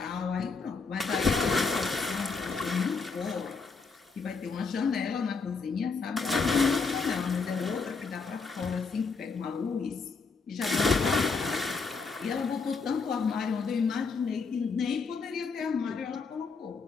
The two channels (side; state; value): right; quieter; 4.7 dB